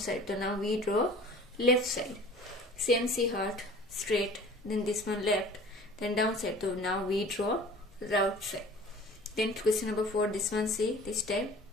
so now we draw left side, same see heart straight, then this one left, then down side, so now we draw right side. Then question number 4, this one see this type,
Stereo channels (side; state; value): both; normal; correlation 0.45